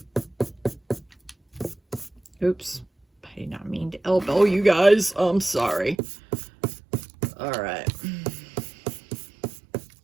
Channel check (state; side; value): drops out; left; at 6.0 s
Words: Oops, I did not mean to elbow you guys. I'm sorry. All right.